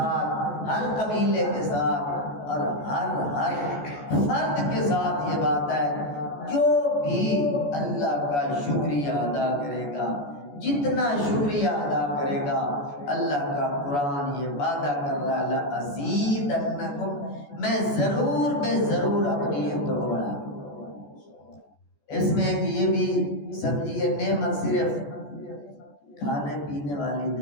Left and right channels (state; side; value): late; right; 14 ms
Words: ہر قبیلے کے ساتھ اور ہر فرد کے ساتھ یہ بات ہے. جو بھی اللہ کا شکریہ ادا کرے گا، جتنا شکریہ ادا کرے گا، اللہ کا قرآن یہ وعدہ کر رہا ہے لَأَزِيدَنَّكُمْ، میں ضرور بے ضرور اپنی نعمتوں کو بڑھا دوں. اس میں ایک یہ بھی سمجھیے نعمت صرف کھانے پینے والی